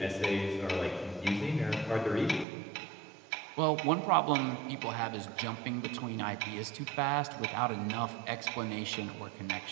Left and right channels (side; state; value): left; drops out; at 2.5 s